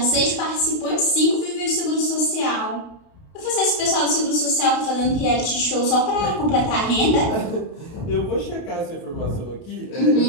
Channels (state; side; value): late; right; 31 ms